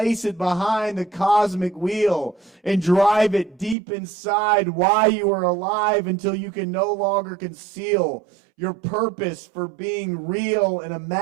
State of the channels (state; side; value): drops out; left; at 3.8 s